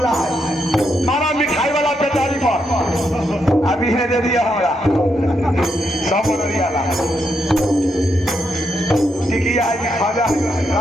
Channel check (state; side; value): normal; both; correlation 0.80